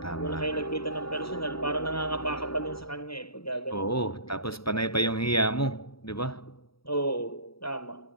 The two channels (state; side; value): late; right; 0.75 ms